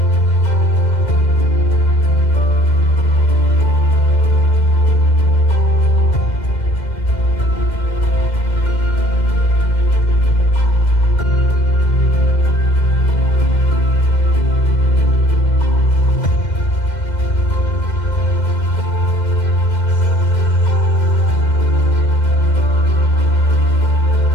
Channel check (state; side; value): late; right; 2.1 ms